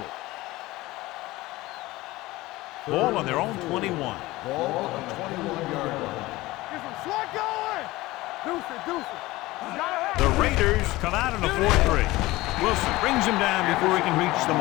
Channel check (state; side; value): quieter; right; 19.1 dB